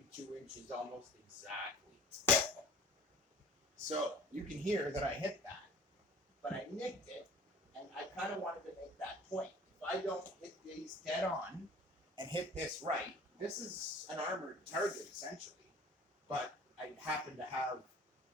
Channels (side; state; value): both; normal; correlation 0.46